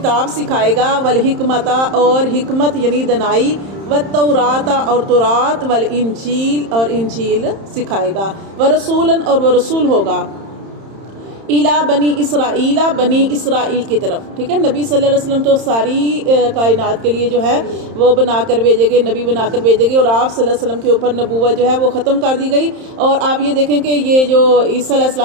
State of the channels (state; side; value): late; left; 31 ms